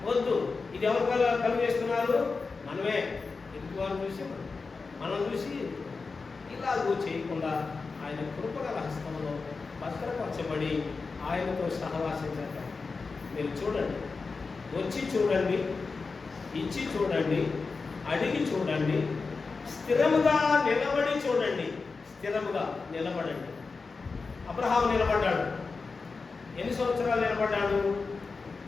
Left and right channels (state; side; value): quieter; right; 4.4 dB